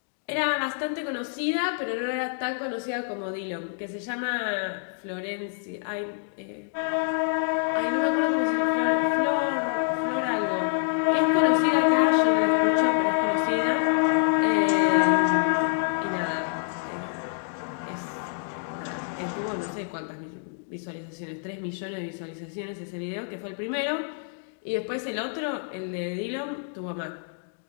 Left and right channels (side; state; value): right; silent; digital silence